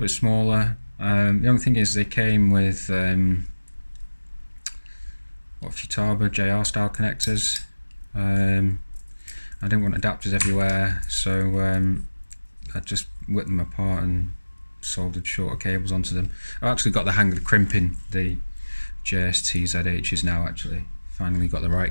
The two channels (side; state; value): both; inverted; correlation -1.00